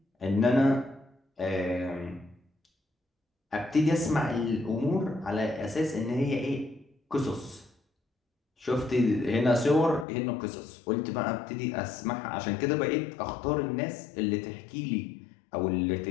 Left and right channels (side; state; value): right; drops out; at 10.1 s